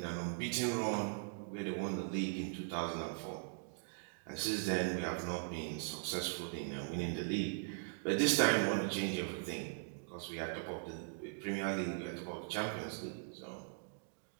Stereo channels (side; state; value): left; silent; digital silence